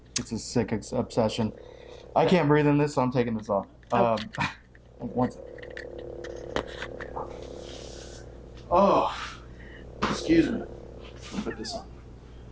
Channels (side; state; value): both; identical; correlation 1.00